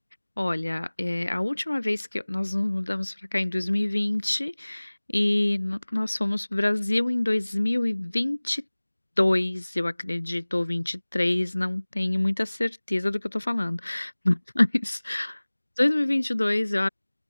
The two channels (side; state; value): both; inverted; correlation -1.00